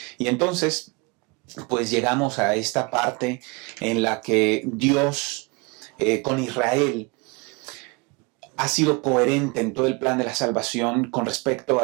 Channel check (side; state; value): left; quieter; 28.3 dB